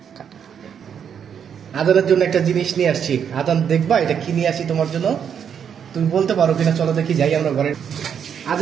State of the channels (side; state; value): left; quieter; 7.9 dB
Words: আজানের জন্য একটা জিনিস নিয়ে আসছি। আজান, দেখবা এটা কি নিয়ে আসছি তোমার জন্য? তুমি বলতে পারো কিনা? চলো দেখি, যাই আমরা ঘরে।